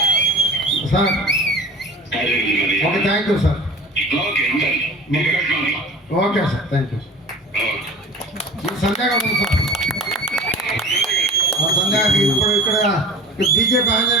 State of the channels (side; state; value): both; normal; correlation 0.39